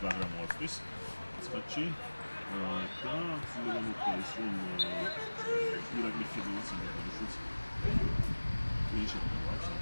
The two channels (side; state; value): both; inverted; correlation -1.00